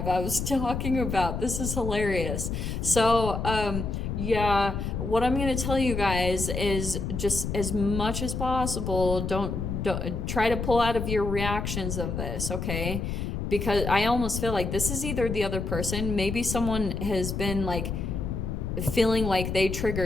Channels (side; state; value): left; noise; rumble, 3 dB below the sound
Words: I was talking about. This is hilarious. So, yeah, what I'm going to tell you guys is, just as much as possible, don't try to pull out of your reactions of this, okay? Because I almost feel like this is either the other person, maybe someone has been like feeling like they